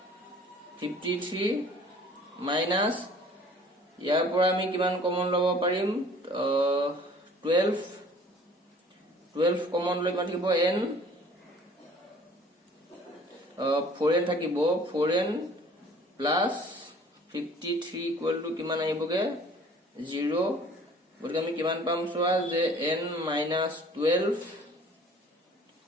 53 minus ইয়াৰ পৰা আমি কিমান কমন ল'ব পাৰিম 12 কমন লৈ কিমান থাকিব n 4n থাকিব 4n plus 53 equal to কিমান আহিবগে 0 গতিকে আমি কিমান পাম চোৱা যে n minus 12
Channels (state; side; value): normal; both; correlation 0.51